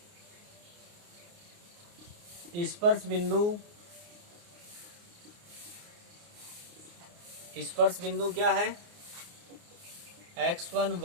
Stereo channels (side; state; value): left; late; 29 ms